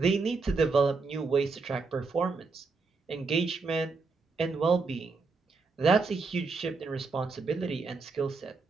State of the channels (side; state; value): left; quieter; 4.2 dB